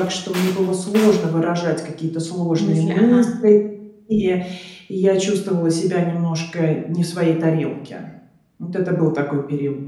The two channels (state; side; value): identical; both; correlation 1.00